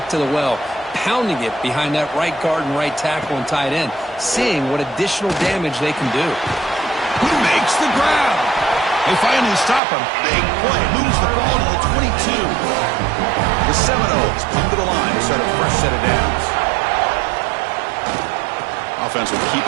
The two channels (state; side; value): drops out; left; at 9.8 s